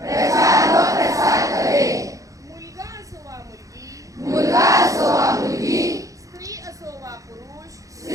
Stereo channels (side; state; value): left; late; 0.16 ms